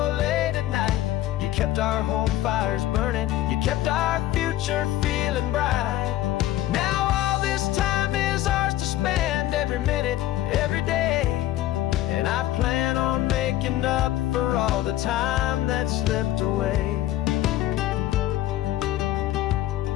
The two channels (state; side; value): quieter; right; 14.3 dB